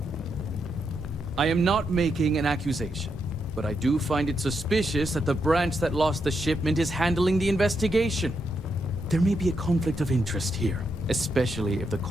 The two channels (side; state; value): both; normal; correlation 0.81